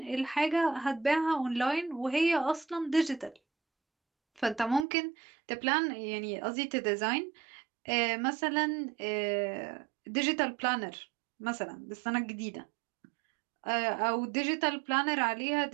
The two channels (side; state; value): left; drops out; at 4.9 s